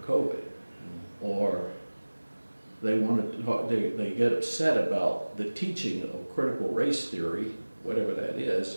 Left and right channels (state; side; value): inverted; both; correlation -1.00